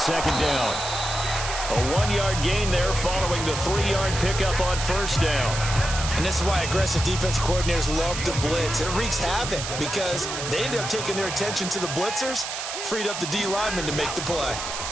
down. A 1-yard gain there following the 3-yard pickup on first down. And this is why aggressive defensive coordinators love to blitz. It wreaks havoc because they end up taking their attention to the blitzers, freed up the D lineman to make the play.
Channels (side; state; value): right; noise; hiss, 5 dB below the sound